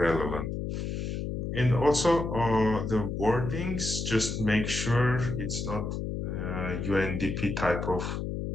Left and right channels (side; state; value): left; noise; hum, 3 dB below the sound